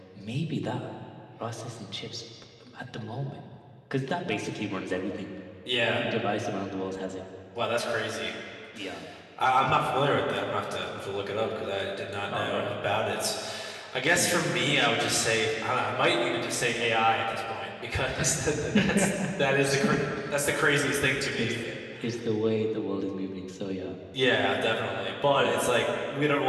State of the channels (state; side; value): identical; both; correlation 1.00